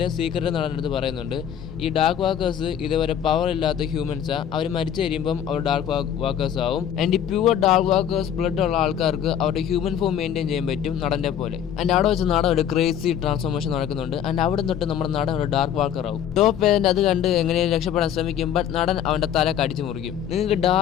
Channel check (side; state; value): right; quieter; 9.4 dB